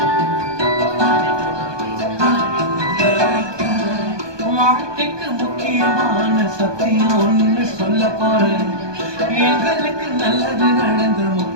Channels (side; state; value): left; late; 1.2 ms